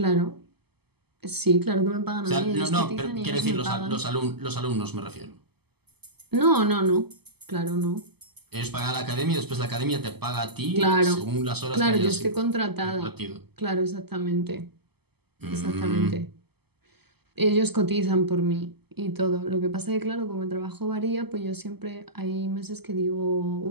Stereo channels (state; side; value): late; left; 0.97 ms